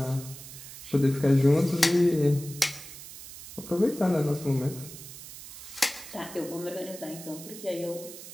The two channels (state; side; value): noise; right; hiss, 14 dB below the sound